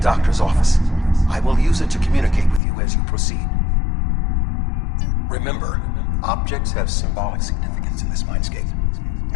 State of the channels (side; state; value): right; drops out; at 2.6 s